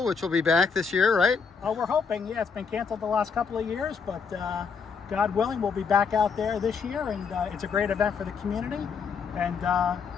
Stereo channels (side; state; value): right; quieter; 5.8 dB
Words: which will be back this year, right? Oh, we're hoping. Yeah, it's been canceled the last couple of years, but God willing, we'll be back out there this year, and it's a great event for the community.